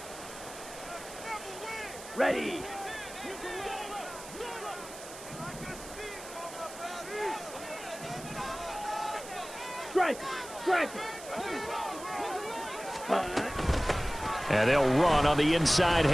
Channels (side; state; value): right; noise; hiss, 14 dB below the sound